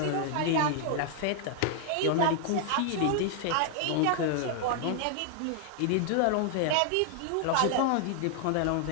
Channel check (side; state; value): both; different; correlation 0.00